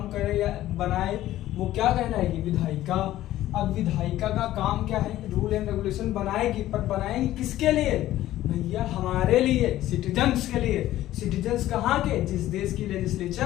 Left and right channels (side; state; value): right; quieter; 14.3 dB